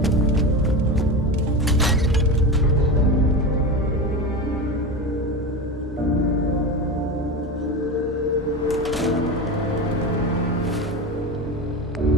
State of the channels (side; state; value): both; normal; correlation 0.23